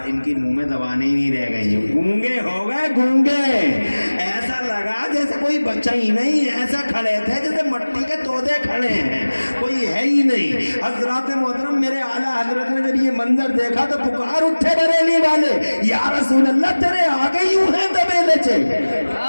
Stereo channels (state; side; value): inverted; both; correlation -1.00